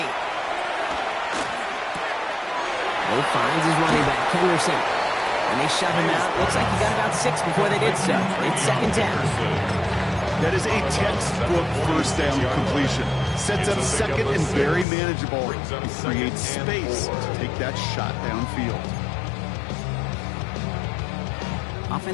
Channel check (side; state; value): right; drops out; at 14.9 s